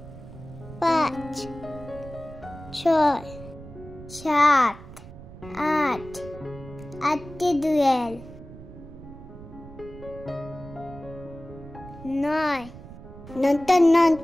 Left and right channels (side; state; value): right; noise; rumble, 16 dB below the sound